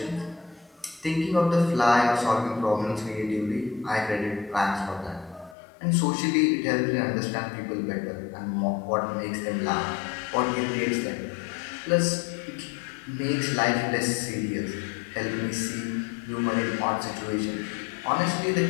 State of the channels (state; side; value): drops out; right; at 5.6 s